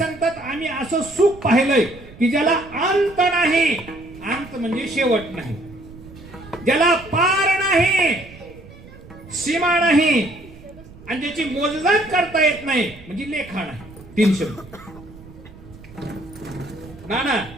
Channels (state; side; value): noise; right; rumble, 19 dB below the sound